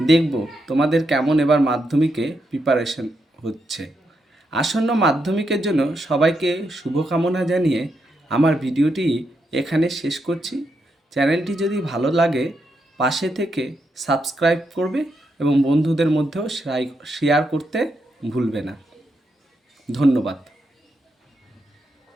দেখব তোমাদের কেমন এবার মাধ্যমিকে প্রিপারেশন হচ্ছে। আসন্ন মাধ্যমিকের জন্য সবাইকে শুভকামনা জানিয়ে আমার ভিডিওটি এখানে শেষ করছি। চ্যানেলটি যদি ভালো লাগে পাশে থেকে সাবস্ক্রাইব করবে এবং বন্ধুদের মধ্যেও শেয়ার করতে ভুলবে না। ধন্যবাদ।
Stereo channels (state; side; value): normal; both; correlation 0.82